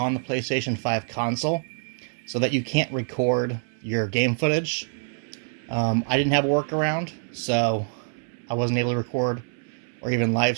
the PlayStation 5 console so that you can't record your game footage. I didn't have a workaround, so I wasn't able to record or even live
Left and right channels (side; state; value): left; silent; 61 dB below the other